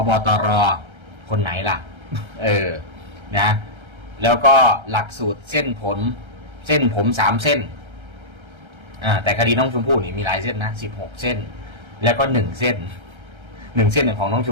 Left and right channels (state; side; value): late; left; 1.3 ms